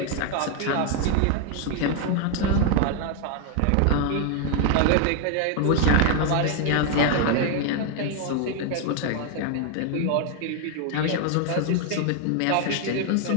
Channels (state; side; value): different; both; correlation 0.00